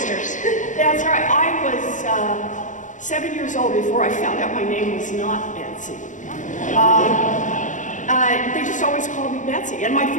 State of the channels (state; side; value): late; right; 0.37 ms